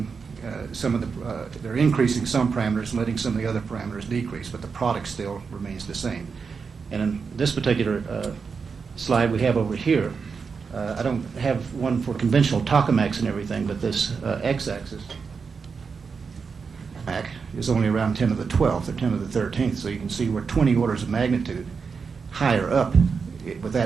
some of the, they're increasing some parameters and letting some of the other parameters decrease, but the product still remains the same. And in this particular slide we have over here, I don't have one for conventional tokamaks and everything, but this x-axis is only around 10 to the 12th or 10 to the 13th, so you can see we're 20 orders of magnitude higher up with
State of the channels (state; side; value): quieter; left; 5.4 dB